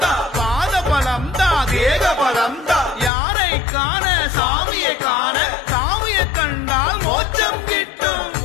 தா பாதபலம் தா தேகபலம் தா யாரை காண சாமியை காண சாமியை கண்டால் மோட்சம் கிட்டும்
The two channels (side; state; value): right; drops out; at 3.1 s